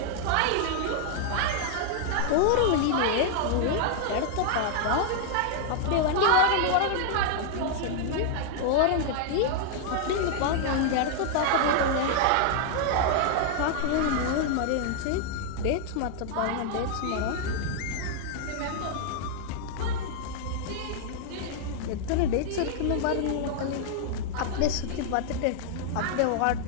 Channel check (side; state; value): both; different; correlation 0.00